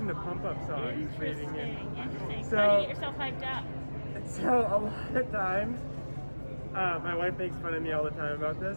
to pump up songs. Interesting. So, How do you get yourself hyped up? So a lot of times, my wife makes fun of me all the time about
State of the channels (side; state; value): both; inverted; correlation -1.00